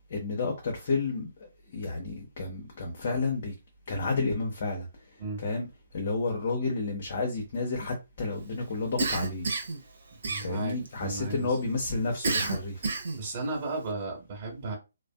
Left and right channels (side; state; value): both; inverted; correlation -0.68